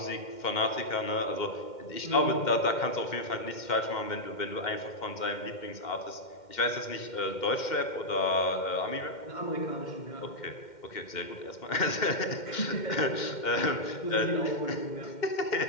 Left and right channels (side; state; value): right; late; 2.1 ms